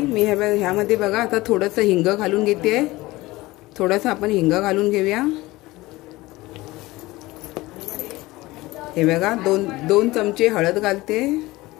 मी ह्यामध्ये बघा आता थोडंसं हिंग घालून घेते. थोडंसं आपण हिंग घालून घेऊया. हे बघा, 2 चमचे हळद घालते.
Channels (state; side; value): quieter; right; 19.7 dB